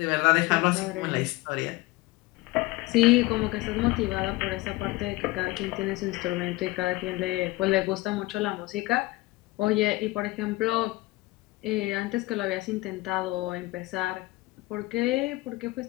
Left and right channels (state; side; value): quieter; right; 20.3 dB